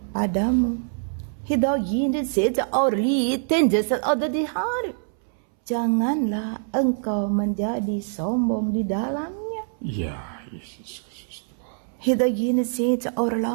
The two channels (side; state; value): left; silent; 62 dB below the other